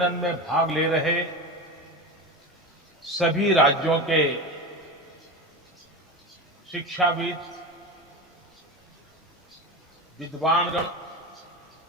में भाग ले रहे सभी राज्यों के शिक्षाविद, विद्वानगण,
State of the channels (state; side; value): normal; both; correlation 0.24